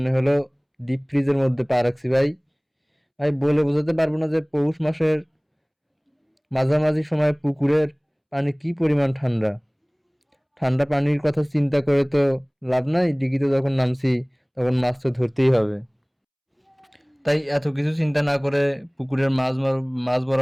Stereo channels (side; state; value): both; identical; correlation 1.00